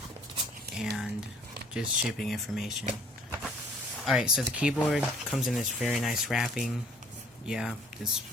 and just shipping information. Alright, so the keyboard comes in this very nice wrapping. Yeah, this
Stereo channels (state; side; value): normal; both; correlation 0.57